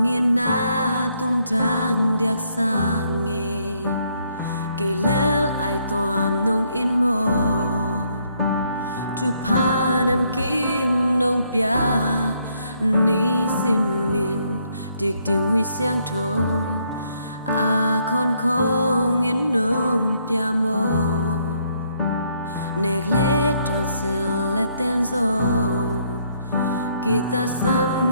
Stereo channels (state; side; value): inverted; both; correlation -0.71